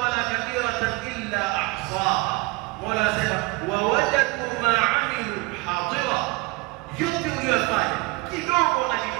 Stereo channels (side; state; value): left; quieter; 24.8 dB